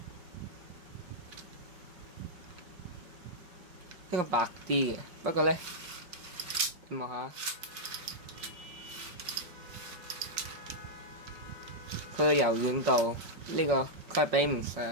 呢個白啲嘅，不過咧，你望下。佢嘅柔軟度呢個佢係比唔上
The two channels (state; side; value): late; left; 5.6 ms